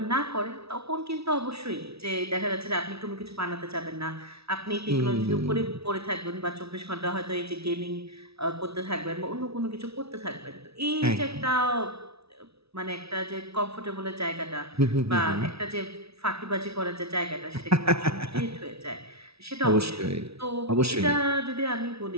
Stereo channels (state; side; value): late; left; 0.77 ms